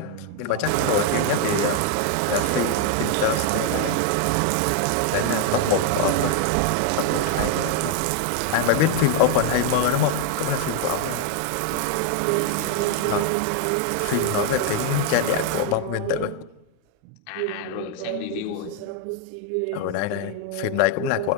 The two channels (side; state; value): both; different; correlation 0.01